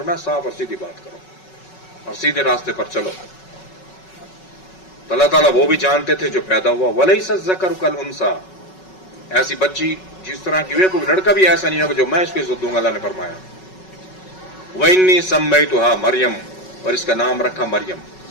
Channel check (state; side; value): late; right; 5.4 ms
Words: صاف اور سیدھی بات کرو اور سیدھے راستے پر چلو. تو اللہ تعالیٰ وہ بھی جانتے تھے جو پیدا ہوا. وَلَيْسَ الذَّكَرُ كَالْأُنثَىٰ، ایسی بچی جس طرح کی ہوئی، کوئی لڑکا بھی ایسا نہیں ہوگا جو میں اس کو عزت دوں گا. اللہ نے فرمایا وَإِنِّي سَمَّيْتُهَا مریم، اور اس کا نام رکھا مریم.